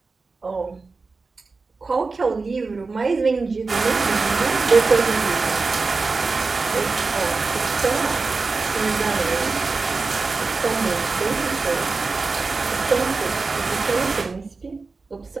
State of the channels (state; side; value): quieter; left; 4.1 dB